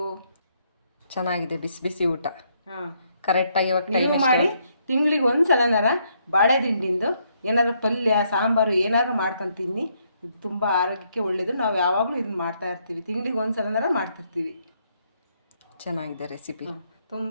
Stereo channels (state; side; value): inverted; both; correlation -0.73